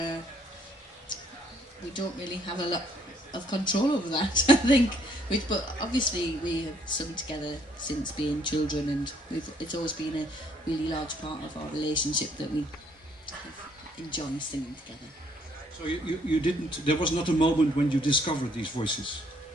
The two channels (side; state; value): both; normal; correlation 0.66